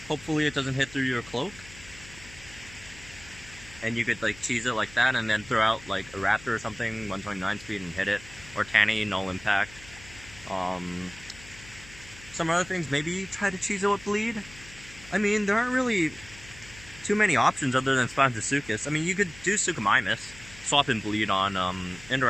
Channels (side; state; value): left; noise; hum, 19 dB below the sound